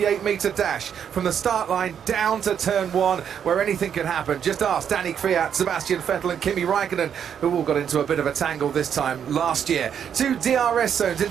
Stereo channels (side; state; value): left; quieter; 8.3 dB